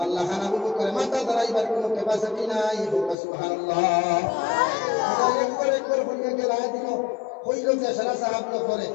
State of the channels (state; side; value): drops out; right; at 3.2 s